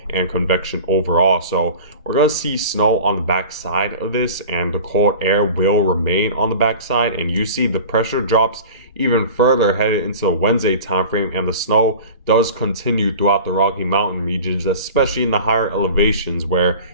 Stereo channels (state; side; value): inverted; both; correlation -0.38